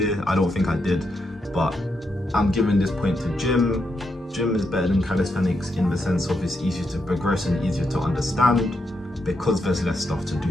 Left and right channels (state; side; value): normal; both; correlation 0.82